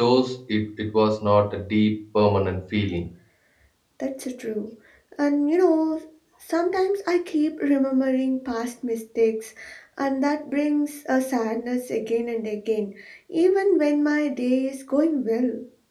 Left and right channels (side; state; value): both; identical; correlation 1.00